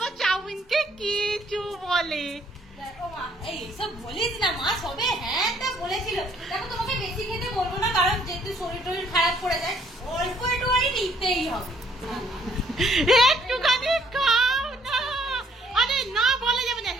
চাউমিনকে কিছু বলে। ও মা, এই সব বলিস না, মা সবে হ্যাঁ তা বলেছিল। দেখো তোমাকে বেশি খেতে বলবো না, কারণ যেহেতু শরীর টরীর খারাপ করে যায়, অল্প একটু নিতেই হবে। একটুখানি খাও না। আরে না বলা যাবে না।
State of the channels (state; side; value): normal; both; correlation 0.64